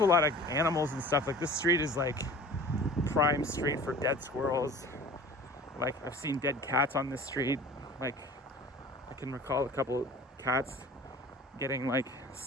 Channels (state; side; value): normal; both; correlation 0.43